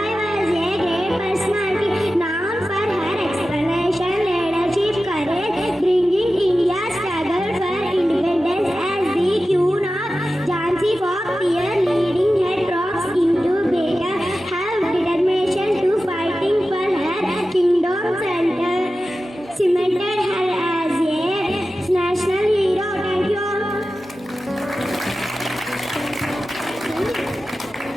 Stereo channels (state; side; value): normal; both; correlation 0.94